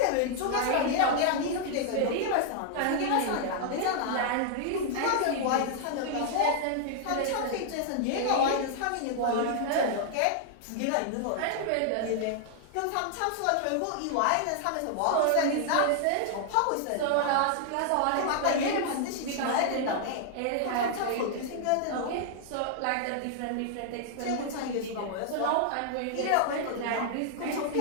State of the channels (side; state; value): both; different; correlation 0.00